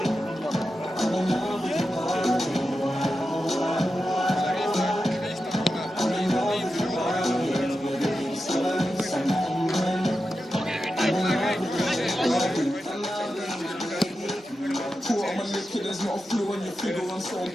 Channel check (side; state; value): both; normal; correlation 0.90